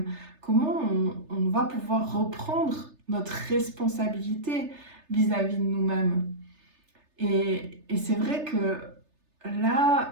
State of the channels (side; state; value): left; late; 3.3 ms